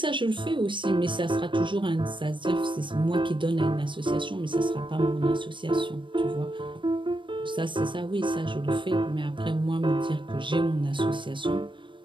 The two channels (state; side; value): late; left; 0.24 ms